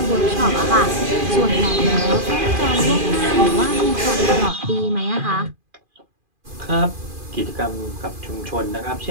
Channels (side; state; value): left; late; 2.4 ms